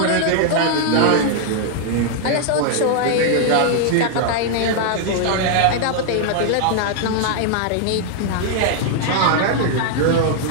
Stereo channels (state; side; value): different; both; correlation 0.00